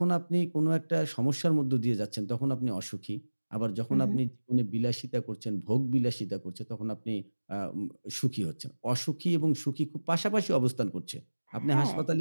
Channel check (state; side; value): inverted; both; correlation -1.00